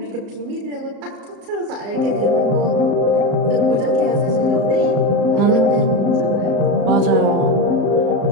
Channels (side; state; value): left; late; 34 ms